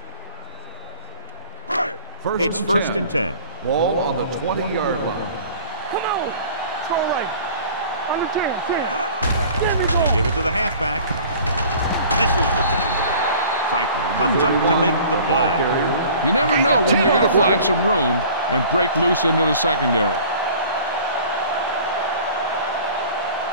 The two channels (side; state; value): both; inverted; correlation -0.47